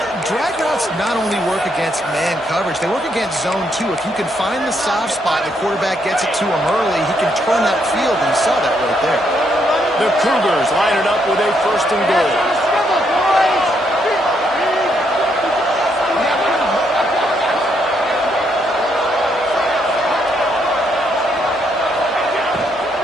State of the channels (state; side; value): normal; both; correlation 0.75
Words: drag routes not only work against man coverage, they work against zone too. If you can find the soft spot, the quarterback gets it to him early, he can turn that field, and you saw that right there. The Cougars line it up with a 1st and goal.